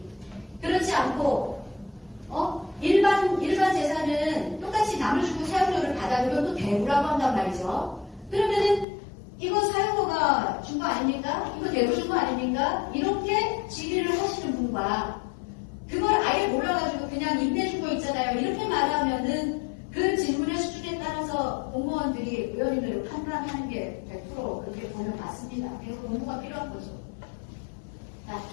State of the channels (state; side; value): drops out; right; at 8.8 s